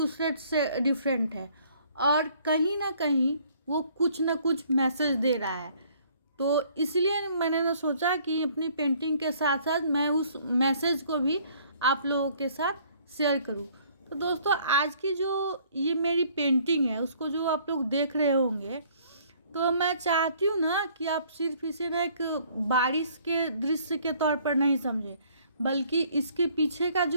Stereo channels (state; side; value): inverted; both; correlation -0.60